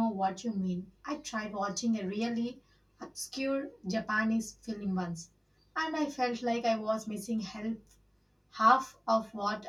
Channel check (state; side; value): identical; both; correlation 1.00